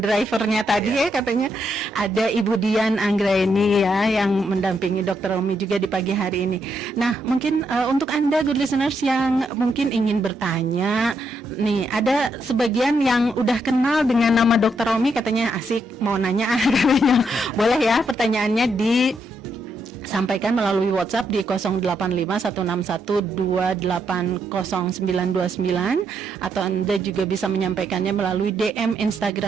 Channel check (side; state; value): both; normal; correlation 0.78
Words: tadi ya, katanya ada Ibu Dian Anggraini ya yang mendampingi Dr. Romi juga di pagi hari ini. Nah, mungkin untuk Anda good listeners yang mungkin ingin bertanya nih, ada sebagian yang udah kenal dengan nama Dr. Romi, katanya asik mau nanya katanya. Boleh ya pertanyaannya disampaikan melalui WhatsApp di 085161280929, atau Anda juga bisa menyampaikannya melalui DM